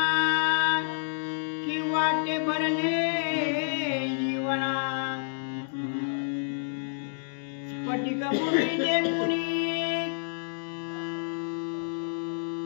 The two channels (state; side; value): silent; right; digital silence